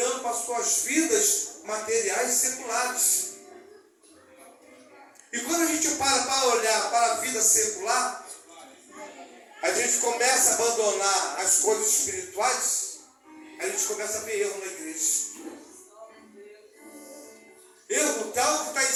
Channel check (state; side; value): identical; both; correlation 1.00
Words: para as suas vidas materiais seculares. E quando a gente para olhar para a vida secular, a gente começa a abandonar as coisas espirituais, a gente começa a ver erro na igreja. Erro tal que está em